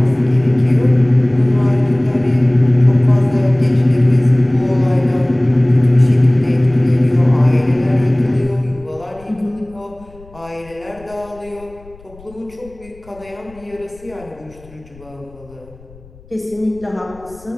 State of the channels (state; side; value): noise; left; rumble, 24 dB below the sound